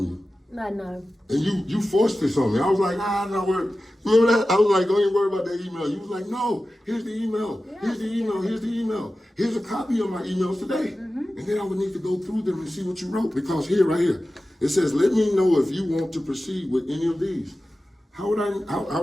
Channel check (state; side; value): normal; both; correlation 0.95